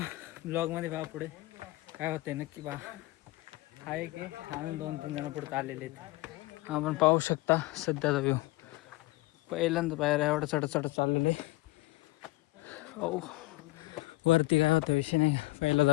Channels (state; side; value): quieter; right; 20.5 dB